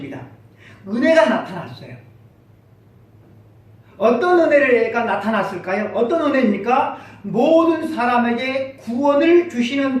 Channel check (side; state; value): both; identical; correlation 1.00